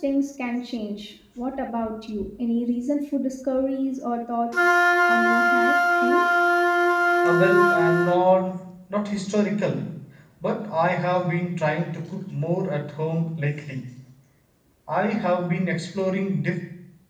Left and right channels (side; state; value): both; identical; correlation 1.00